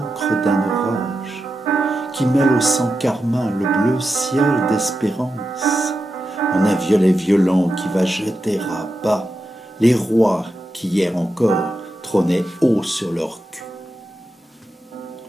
d'un orage qui mêle au sang carmin le bleu ciel d'espérance, en un violet violent qui va jeter à bas les rois qui hier encore trônaient haut sur leur cul.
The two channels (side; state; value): both; normal; correlation 0.89